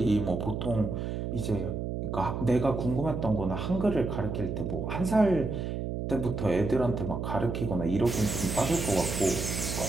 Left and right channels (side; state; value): right; noise; hum, 3 dB below the sound